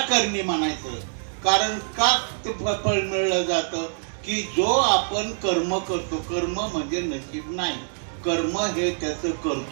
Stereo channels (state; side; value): silent; left; 62 dB below the other